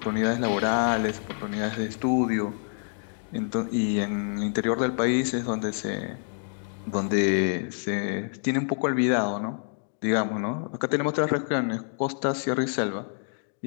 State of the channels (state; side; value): silent; right; 60 dB below the other